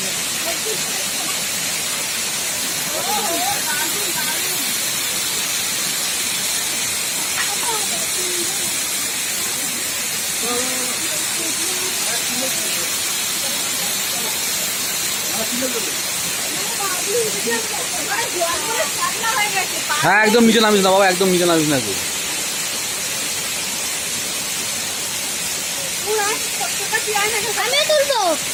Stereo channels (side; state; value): both; identical; correlation 1.00